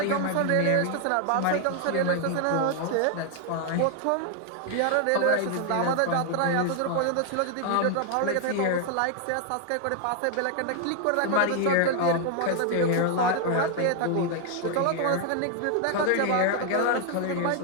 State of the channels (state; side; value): different; both; correlation 0.00